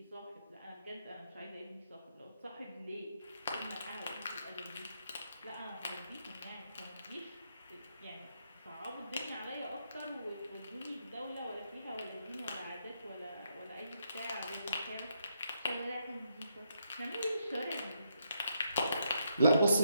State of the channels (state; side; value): inverted; both; correlation -0.77